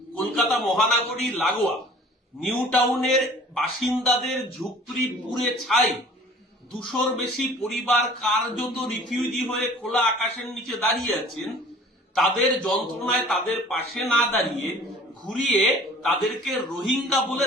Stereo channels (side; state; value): both; normal; correlation 0.48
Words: কলকাতা মহানগরী লাগোয়া নিউ টাউনের বাসিন্দাদের ঝুপড়ি পুড়ে ছাই, 200-র বেশি পরিবার কার্যত রিফিউজি হয়ে খোলা আকাশের নিচে দাঁড়িয়ে আছেন। তাদের যন্ত্রণায় তাদের পাশে না দাঁড়িয়ে ঘুরিয়ে তাদেরকে রোহিঙ্গা বলে